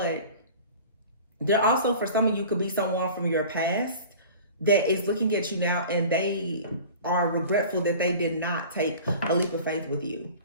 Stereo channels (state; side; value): inverted; both; correlation -0.41